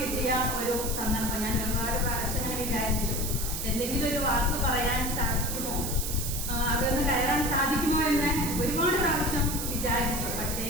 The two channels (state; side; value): noise; right; hiss, 4 dB below the sound